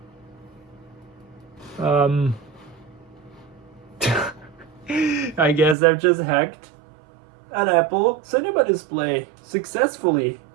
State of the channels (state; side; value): drops out; left; at 5.8 s